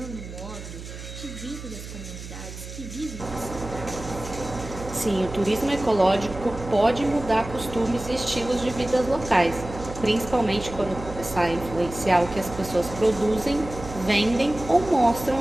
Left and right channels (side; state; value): right; noise; hum, 12 dB below the sound